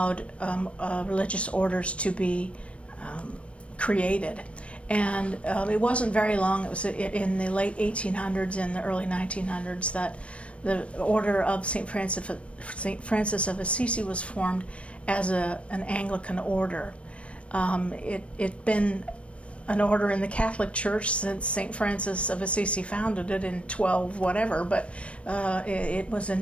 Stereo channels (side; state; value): right; late; 0.061 ms